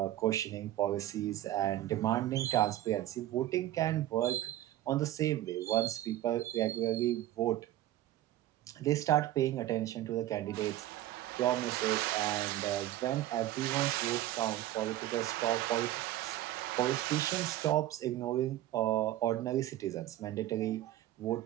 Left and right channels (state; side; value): quieter; left; 14.1 dB